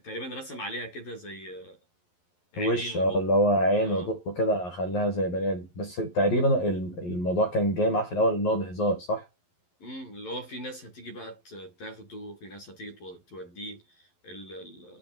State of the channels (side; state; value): right; late; 11 ms